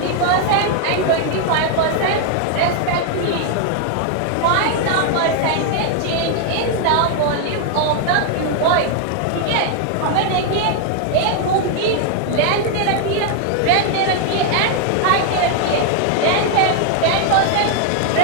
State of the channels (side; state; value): both; different; correlation 0.00